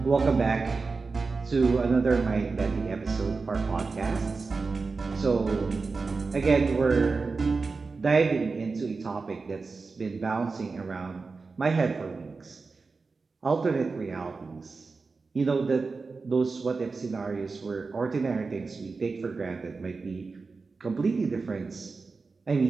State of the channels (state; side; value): quieter; left; 4.3 dB